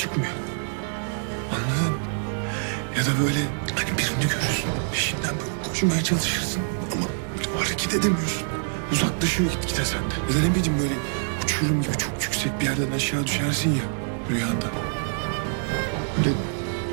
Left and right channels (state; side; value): silent; left; digital silence